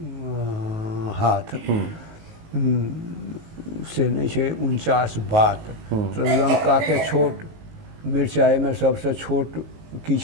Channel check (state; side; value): late; left; 19 ms